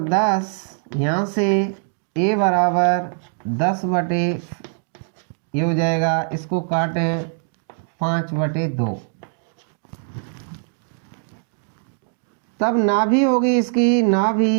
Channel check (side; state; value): left; silent; digital silence